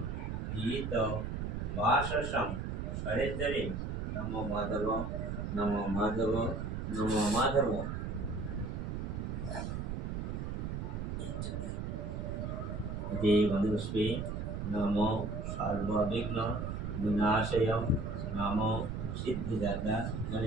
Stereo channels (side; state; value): right; noise; rumble, 3 dB below the sound